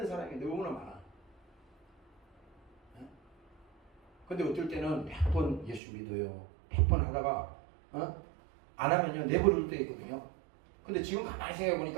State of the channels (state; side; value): drops out; left; at 5.8 s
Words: 사람이 너무나 많아. 근데 어떨 때는 100번 예수 믿어요. 100번 하다가 안 하면요 내버릴 때 있거든요. 근데 지금 가만히 생각해